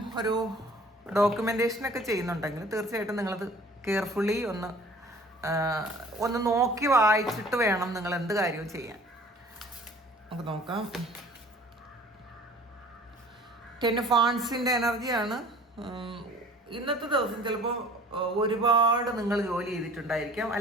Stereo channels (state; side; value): normal; both; correlation 0.49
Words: ഒരു ഡോക്യുമെൻറ്റേഷനൊക്കെ ചെയ്യുന്നുണ്ടെങ്കിൽ തീർച്ചയായിട്ടും നിങ്ങളത് കെയർഫുള്ളി ഒന്ന് നോക്കി വായിച്ചിട്ട് വേണം നിങ്ങൾ എന്ത് കാര്യവും ചെയ്യാൻ. നമുക്ക് നോക്കാം. 10 ഓഫ് വാണ്ട്സിൻ്റെ എനർജിയാണ്. ഇന്നത്തെ ദിവസം ചിലപ്പോൾ ഒരുപാട് നിങ്ങൾ ജോലി ചെയ്തിട്ടുണ്ടായിരിക്കാം,